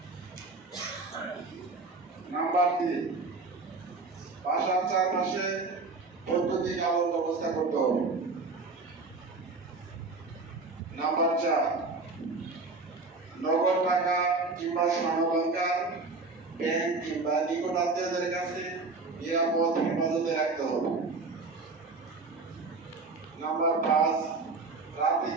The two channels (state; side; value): quieter; left; 3.8 dB